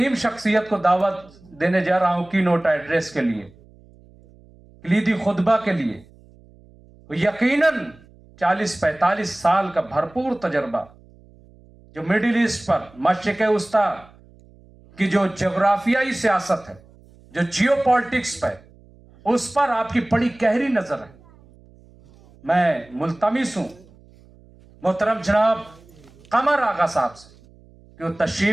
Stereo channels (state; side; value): noise; right; hum, 26 dB below the sound